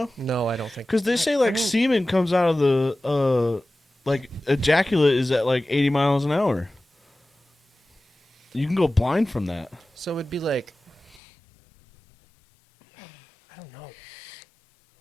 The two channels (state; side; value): drops out; right; at 11.2 s